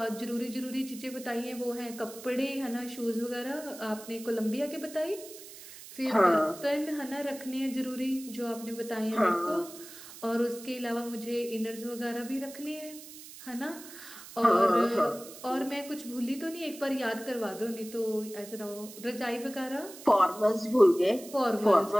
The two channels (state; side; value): noise; right; hiss, 15 dB below the sound